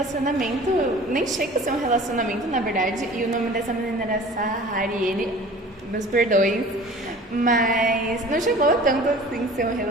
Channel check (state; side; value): normal; both; correlation 0.44